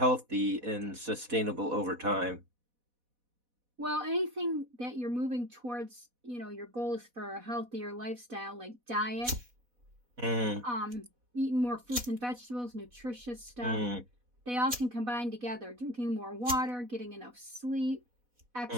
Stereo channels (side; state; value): left; late; 4.1 ms